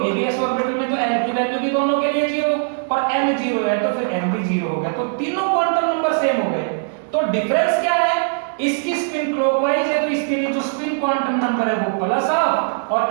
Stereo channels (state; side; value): silent; left; digital silence